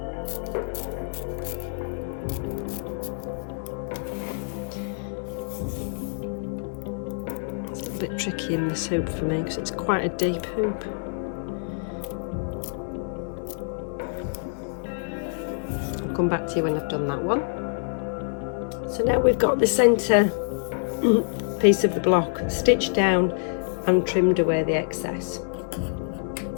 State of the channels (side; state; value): right; silent; digital silence